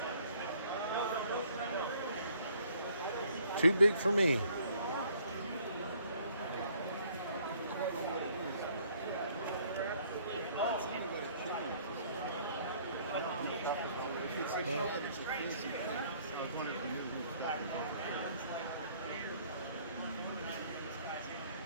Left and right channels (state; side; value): inverted; both; correlation -0.60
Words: Too big for me.